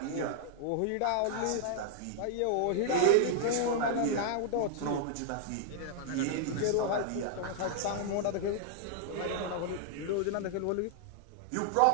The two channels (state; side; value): different; both; correlation -0.01